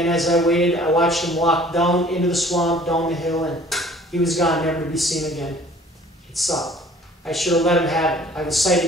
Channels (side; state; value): both; normal; correlation 0.52